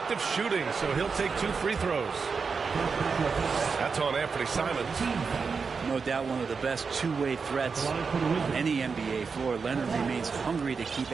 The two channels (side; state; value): left; quieter; 5.2 dB